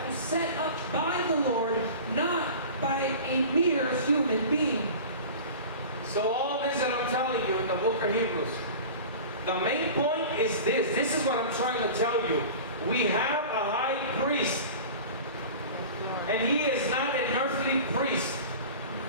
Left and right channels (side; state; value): both; inverted; correlation -0.37